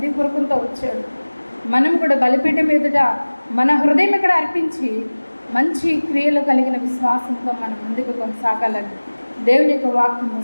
వచ్చాడు. మనం కూడా బలిపీఠం ఎదుట మన హృదయం ఇక్కడ అర్పించి మంచి క్రియలు కలిగిన విశ్వాసంతో మనం ముందుకు కొనసాగాలని దేవుని యొక్క వాక్యము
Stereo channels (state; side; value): inverted; both; correlation -1.00